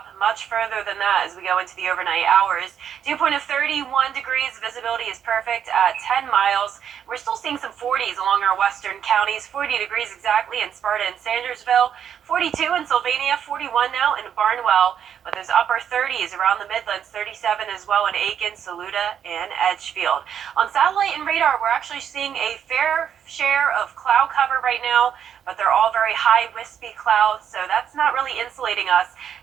much further than that as we go into the overnight hours. Dew point of 31 degrees, visibility is perfect at 10 miles. We're still seeing some 40s along our western counties, 40 degrees exactly in Sparta and Sandersville, 42 in Sylvania, 41 now in Barnwell, but those upper 30s around the Midlands, 37 as well in Aiken, Saluda, and Edgefield. On satellite and radar, we're actually seeing a fair share of cloud cover right now, but they're all very high, wispy clouds, so that's not really insulating us.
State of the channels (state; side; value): quieter; left; 8.7 dB